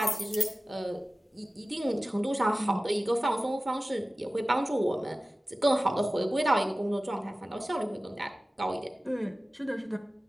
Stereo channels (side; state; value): both; normal; correlation 0.97